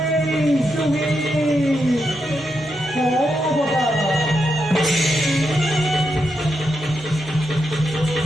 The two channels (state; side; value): normal; both; correlation 0.84